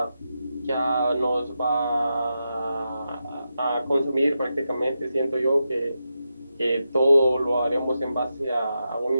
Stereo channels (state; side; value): inverted; both; correlation -0.88